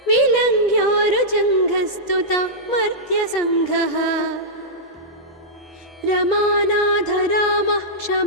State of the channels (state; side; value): normal; both; correlation -0.11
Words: विलङ्घ्योरुजङ्घस्तुता मर्त्यसङ्घः रमानाथ रामः